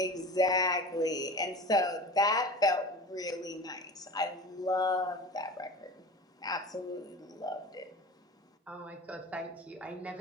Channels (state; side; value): normal; both; correlation 0.35